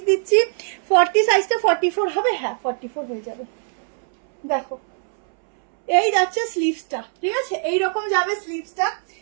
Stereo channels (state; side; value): silent; left; 65 dB below the other